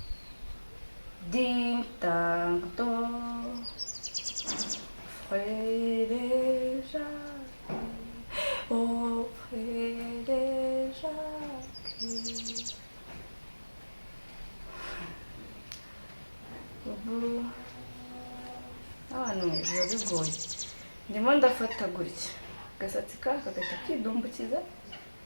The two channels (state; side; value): inverted; both; correlation -1.00